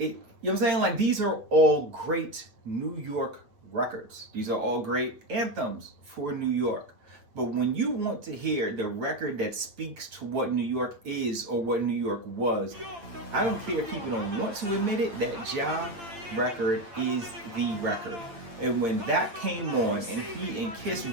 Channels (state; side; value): late; left; 8.8 ms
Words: know what I'm saying? Like, these are all great New York records. These are all great anthems for New York. But when you want to hear the record that speaks to what New York is or what New York was, I don't care if people don't want to admit it, that Ja record is the record. And when that came on and he and Kiss